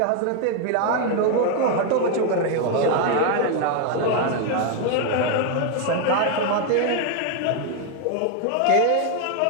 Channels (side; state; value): both; different; correlation 0.01